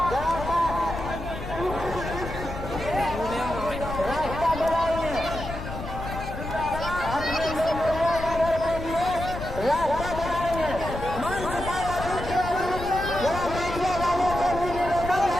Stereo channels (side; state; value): left; noise; rumble, 8 dB below the sound